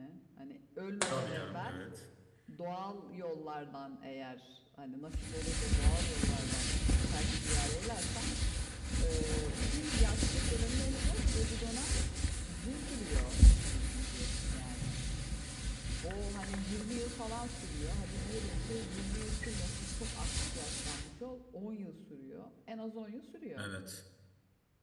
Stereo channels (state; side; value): identical; both; correlation 1.00